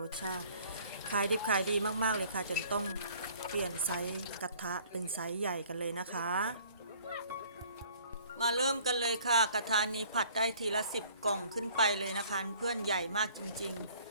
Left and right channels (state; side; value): inverted; both; correlation -0.55